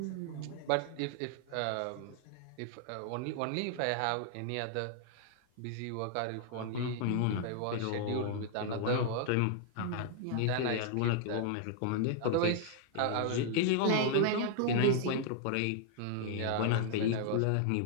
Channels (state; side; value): different; both; correlation -0.01